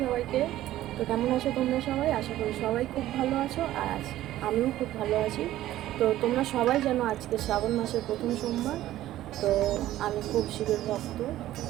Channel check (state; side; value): quieter; left; 14.2 dB